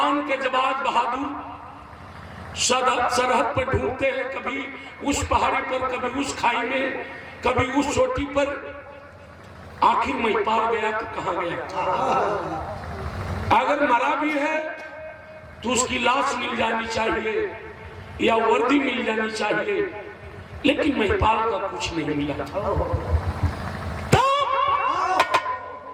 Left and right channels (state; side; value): identical; both; correlation 1.00